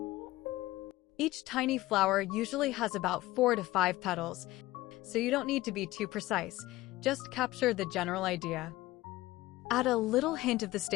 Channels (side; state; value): right; quieter; 17.8 dB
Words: Each tiny flower usually has about 4 to 5 petals, so you don't need to be too precise, just capture the general idea. Add a little hint of the